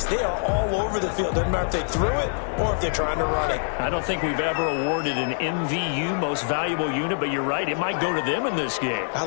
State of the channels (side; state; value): right; silent; 62 dB below the other